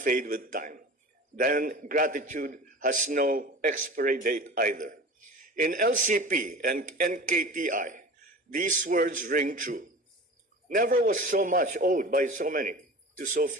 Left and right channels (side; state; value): both; normal; correlation 0.37